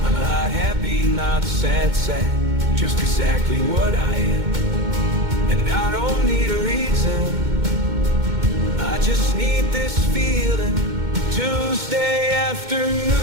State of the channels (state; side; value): late; left; 2.1 ms